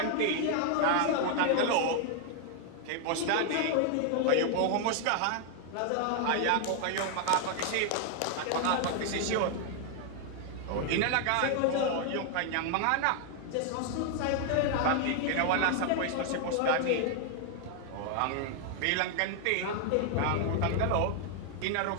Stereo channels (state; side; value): different; both; correlation 0.00